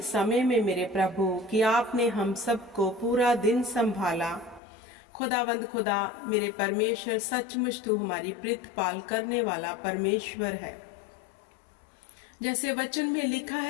समय में मेरे प्रभु कि आपने हम सबको पूरा दिन संभाला। खुदावंद खुदा मेरे परमेश्वर, सचमुच तू हमारी प्रीतपाल करने वाला परमेश्वर है। जैसे वचन में लिखा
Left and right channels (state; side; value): drops out; right; at 4.6 s